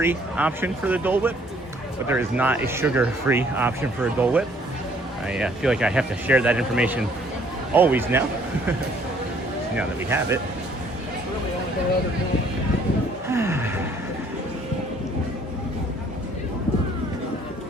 option for the Dole Whip, but there is not a sugar-free option for a Dole Whip. I feel like I have to share that information always now, now that we have it.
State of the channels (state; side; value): normal; both; correlation 0.61